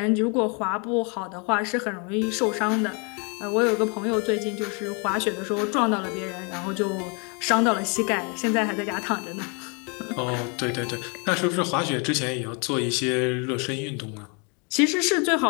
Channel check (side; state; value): right; quieter; 34.1 dB